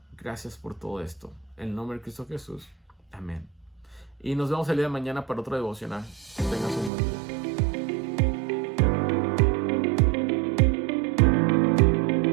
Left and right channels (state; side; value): drops out; left; at 6.9 s